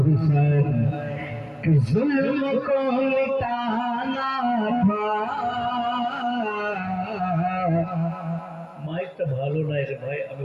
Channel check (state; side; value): identical; both; correlation 1.00